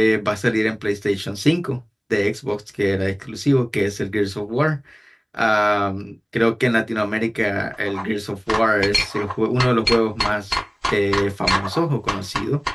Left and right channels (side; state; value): both; identical; correlation 1.00